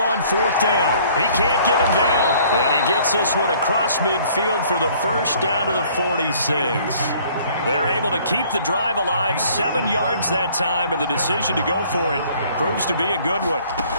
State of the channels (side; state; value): both; inverted; correlation -0.57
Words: 4th down. He can't get him down. And he gets this one across midfield for the 1st down to the 46. They're able to keep the drive alive. 7 yards that time, and the decision to go for it proves to be a good one.